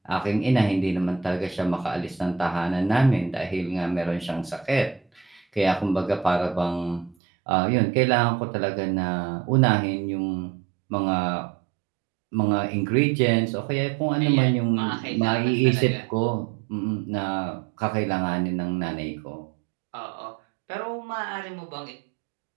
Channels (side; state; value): left; drops out; at 7.2 s